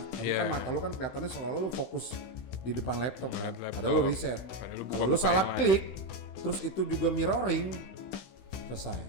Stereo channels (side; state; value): right; late; 16 ms